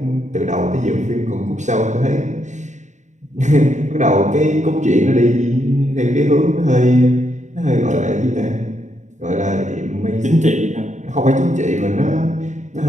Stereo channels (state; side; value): late; left; 0.35 ms